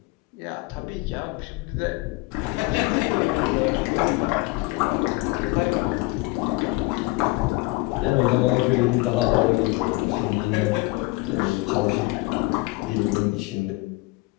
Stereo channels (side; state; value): right; quieter; 22.7 dB